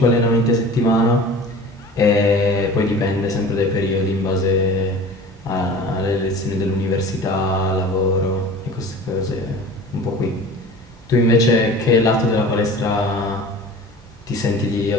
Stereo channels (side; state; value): both; normal; correlation 0.40